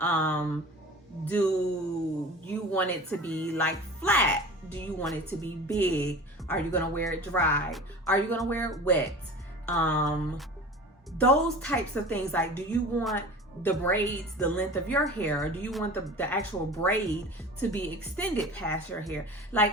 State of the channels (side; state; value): both; normal; correlation 0.37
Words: Do you want it to be like flat? Do you want it to be big? Are you gonna wear it dry? Are you gonna wear it wet? Those types of things. Like, do you want the braids the length of your hair, or do you want the actual braid to be extended past your hair?